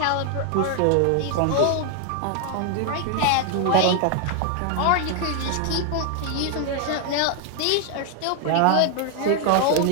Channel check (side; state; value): both; different; correlation 0.00